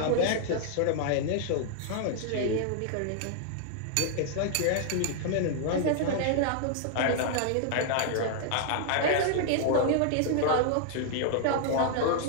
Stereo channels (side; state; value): both; different; correlation -0.01